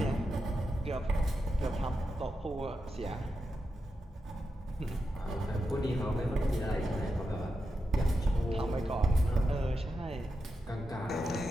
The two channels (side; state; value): both; normal; correlation 0.88